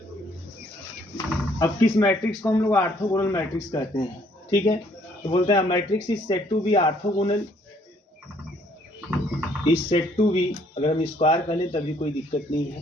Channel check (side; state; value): both; normal; correlation 0.64